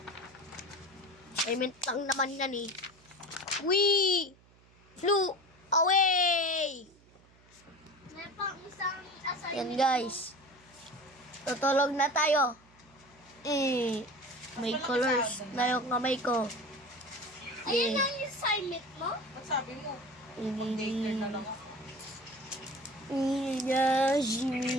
Assignment lang naman yan eh. We flew away! May pang isang assignment. Yan guys. Tutulog na tayo. May colors na yung kamay ko. Ayun ang assignment mo? Ba't sabi mo? Ini. Daycare na lang ako.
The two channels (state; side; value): noise; right; hum, 28 dB below the sound